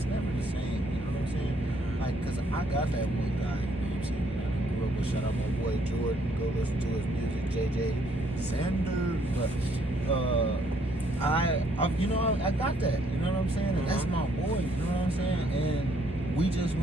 never the same. You know what I'm saying? Like, cause I got that one guy, you know what I'm saying? I grew up with, shout out my boy Jordan, go listen to his music, JJ Sanders. But I got that. You know what I'm saying? And that's my boy. You know what I'm saying? And we just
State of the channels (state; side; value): normal; both; correlation 0.68